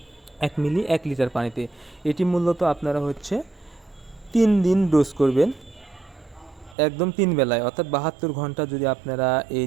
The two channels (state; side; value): drops out; left; at 6.8 s